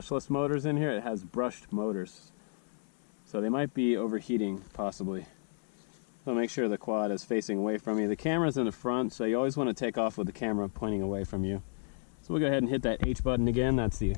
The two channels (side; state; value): right; silent; 56 dB below the other